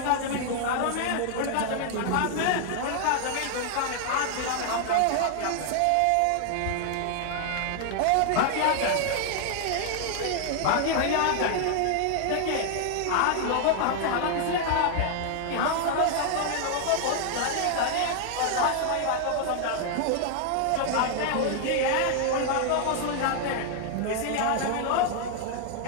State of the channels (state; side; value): different; both; correlation 0.00